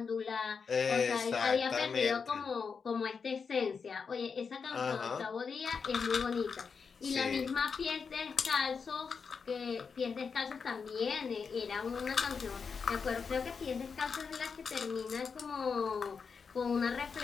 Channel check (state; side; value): quieter; right; 5.7 dB